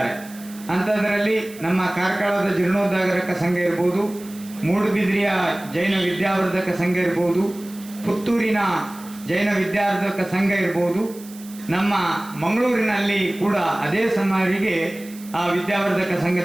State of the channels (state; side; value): noise; right; hiss, 19 dB below the sound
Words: ಅಂಥದ್ರಲ್ಲಿ ನಮ್ಮ ಕಾರ್ಕಳದ ಜೀರ್ಣೋದ್ಧಾರಕ ಸಂಘ ಇರ್ಬೋದು, ಮೂಡುಬಿದ್ರಿಯ ಜೈನ ವಿದ್ಯಾವರ್ಧಕ ಸಂಘ ಇರ್ಬೋದು, ಪುತ್ತೂರಿನ ಜೈನ ವಿದ್ಯಾವರ್ಧಕ ಸಂಘ ಇರ್ಬೋದು, ನಮ್ಮ ಮಂಗಳೂರಿನಲ್ಲಿ ಕೂಡ ಅದೇ ಸುಮಾರಿಗೆ ಆ ವಿದ್ಯಾವರ್ಧಕ